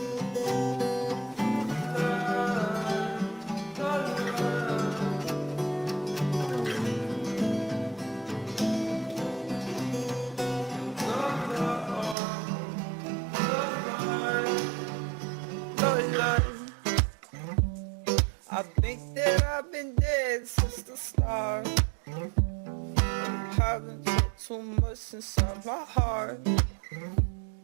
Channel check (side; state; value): left; drops out; at 12.2 s